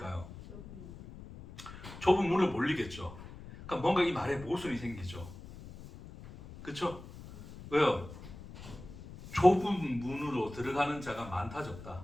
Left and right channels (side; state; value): left; noise; rumble, 15 dB below the sound